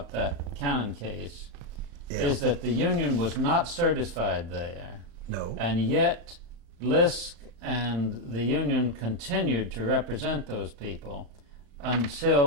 that Cannon case is that the union was not certified there, No. and yet Lisk and the union continued to represent those people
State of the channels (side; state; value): left; late; 35 ms